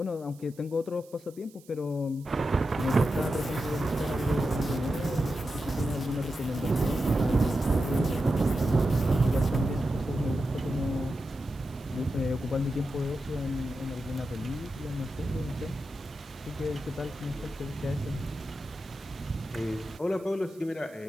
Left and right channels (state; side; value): noise; right; hiss, 26 dB below the sound